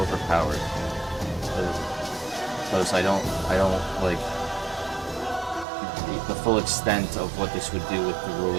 Because I don't, like, the full extent of what this would do with the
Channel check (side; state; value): left; drops out; at 5.7 s